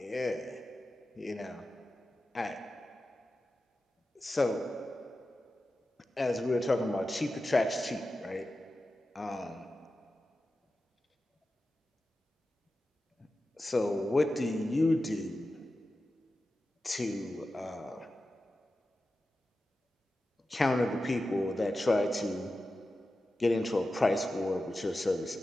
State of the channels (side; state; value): both; normal; correlation 0.93